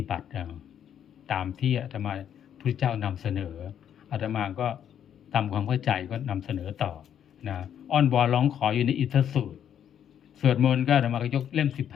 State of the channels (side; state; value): right; quieter; 9.4 dB